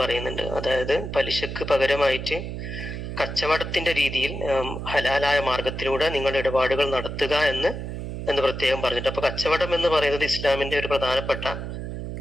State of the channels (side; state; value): right; noise; hum, 6 dB below the sound